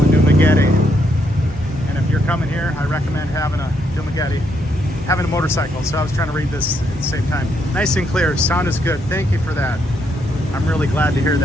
in Dumaguete. And if you're coming here, I recommend having a motorcycle. So I was trying to read this at the same time. Nice and clear, sound is good. Thank you for that. I'm really glad to hear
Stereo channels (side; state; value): both; normal; correlation 0.76